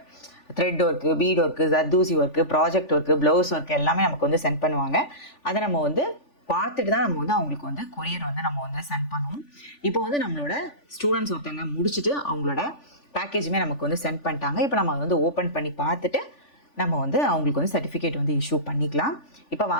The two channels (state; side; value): late; right; 3.4 ms